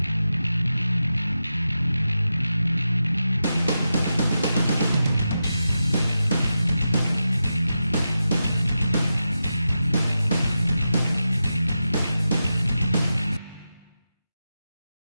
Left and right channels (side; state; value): both; inverted; correlation -0.90